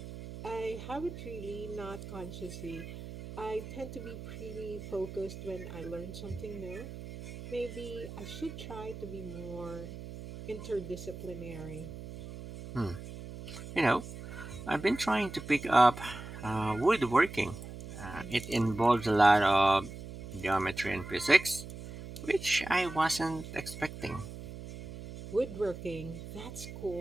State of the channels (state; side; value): noise; right; hum, 11 dB below the sound